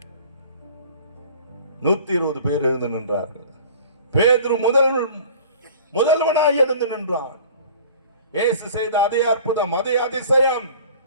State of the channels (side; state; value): both; inverted; correlation -0.45